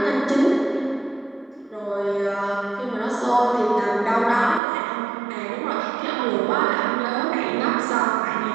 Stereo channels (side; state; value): left; drops out; at 4.6 s